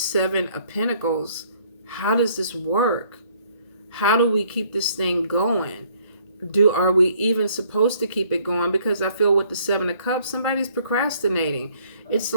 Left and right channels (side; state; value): both; inverted; correlation -0.62